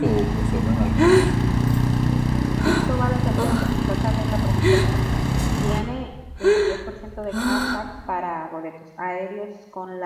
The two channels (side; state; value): both; identical; correlation 1.00